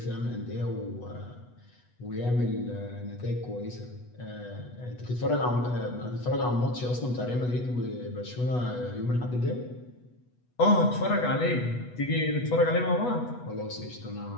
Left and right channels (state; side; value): late; right; 8.1 ms